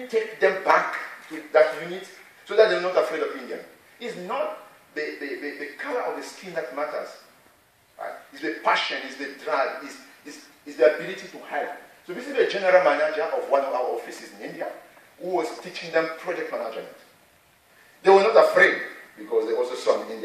take them back to that unit so that they're not afraid of Indian. It's not the color of the skin that matters. Right? It's the passion, it's the drive, it's the ability to help. So this is the general manager of one of our offices in India who was teaching them project management. They were not afraid because they also saw an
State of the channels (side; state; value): both; identical; correlation 1.00